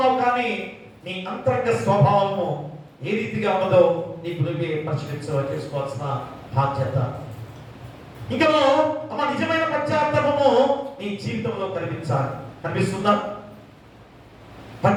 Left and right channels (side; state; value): both; identical; correlation 1.00